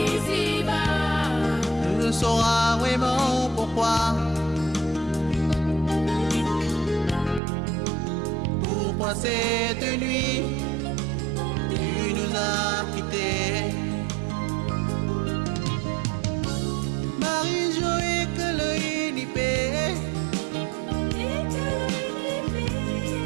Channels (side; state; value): left; drops out; at 7.4 s